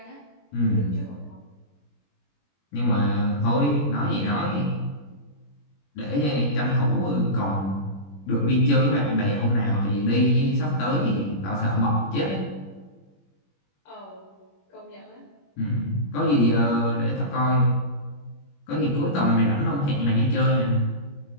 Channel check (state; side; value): late; right; 21 ms